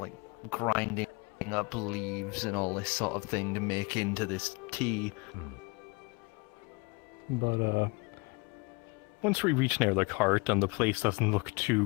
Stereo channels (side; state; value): right; quieter; 28.4 dB